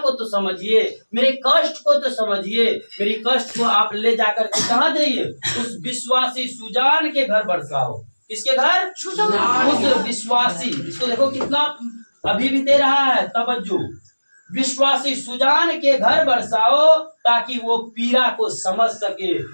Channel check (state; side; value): inverted; both; correlation -1.00